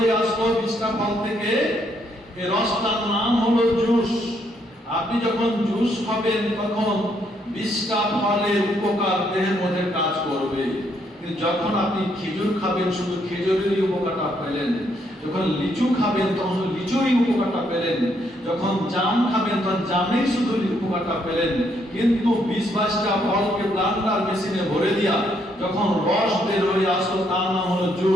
আসলো 20টা ফল থেকে, এই রসটার নাম হলো জুস। আপনি যখন জুস খাবেন তখন 20টা ফলের উপকার দেহের মধ্যে কাজ করবে, কিন্তু যখন আপনি খেজুর খাবেন শুধু খেজুরেরই উপকারটা পেলেন, যখন লিচু খাবেন তখন লিচুরই উপকারটা পেলেন, যখন জাম খাবেন তখন জামের শুধু উপকারটা পেলেন। কিন্তু 20-22টা ফলকে ব্লেন্ডার মেশিনে ভরে দিয়া যখন রস বের হয়ে আসলো তার নাম হলো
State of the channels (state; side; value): normal; both; correlation 0.73